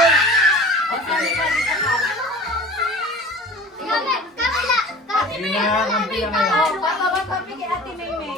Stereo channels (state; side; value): normal; both; correlation 0.41